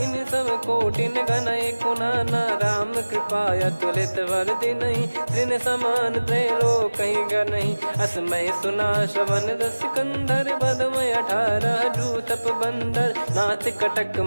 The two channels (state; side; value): inverted; both; correlation -1.00